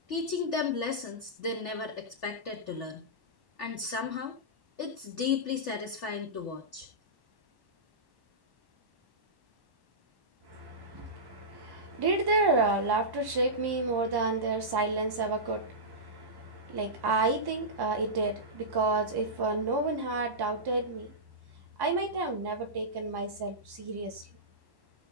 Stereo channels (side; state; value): left; late; 1.1 ms